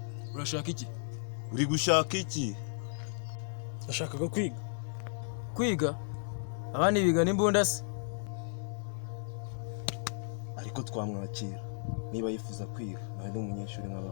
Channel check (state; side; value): silent; right; digital silence